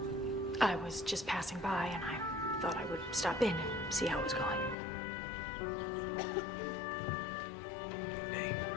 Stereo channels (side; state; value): right; drops out; at 4.8 s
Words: I was just passing by and I thought I would stop in and see how it was going. Good day.